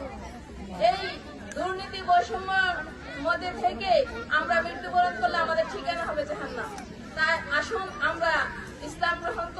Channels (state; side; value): identical; both; correlation 1.00